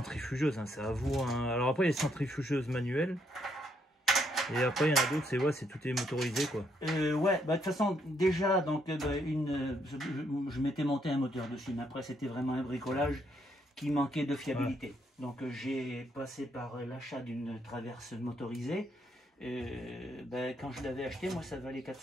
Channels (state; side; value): normal; both; correlation 0.73